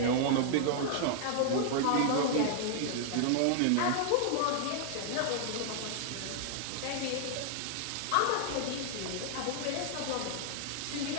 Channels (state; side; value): different; both; correlation -0.01